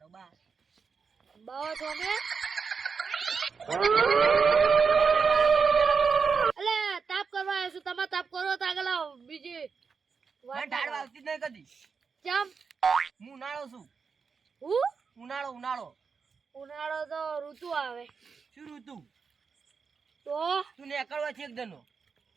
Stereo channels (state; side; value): quieter; left; 5.5 dB